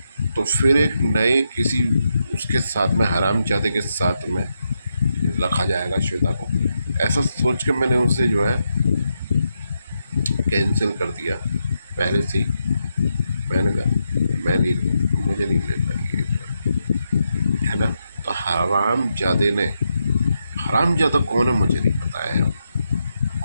तो फिर एक नए किसी उसके साथ में, हरामजादे के साथ में रखा जाएगा श्वेता को, ऐसा सोच के मैंने उसे जो है कैंसिल कर दिया पहले से ही। मैंने कहा मैं नहीं, मुझे नहीं ले पाएगी, है ना। तो हरामजादे ने, हरामजादा कौन है मुझे नहीं पता है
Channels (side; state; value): both; inverted; correlation -0.83